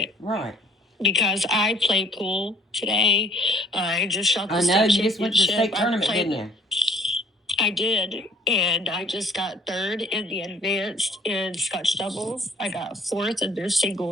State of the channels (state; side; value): normal; both; correlation 0.55